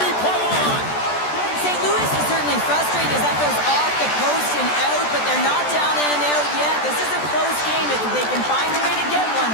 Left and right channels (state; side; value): late; right; 14 ms